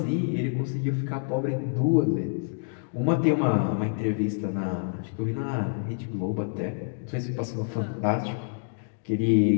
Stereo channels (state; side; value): silent; right; digital silence